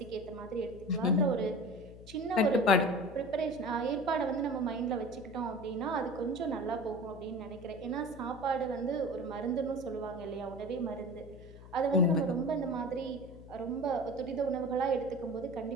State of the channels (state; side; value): noise; left; hum, 17 dB below the sound